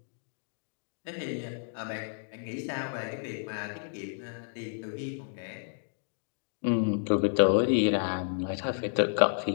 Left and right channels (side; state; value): right; silent; digital silence